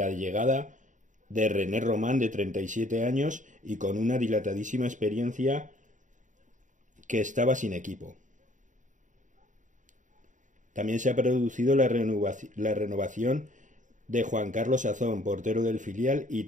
llegada de René Román, de 37 años y con una dilatadísima experiencia, que estaba sin equipo. También se ha producido la renovación de Juan Carlos Azón, portero del filial y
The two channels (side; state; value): left; late; 0.36 ms